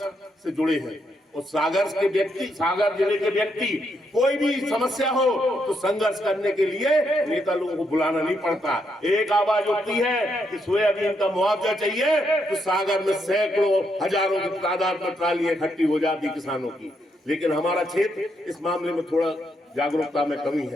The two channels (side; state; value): both; normal; correlation 0.78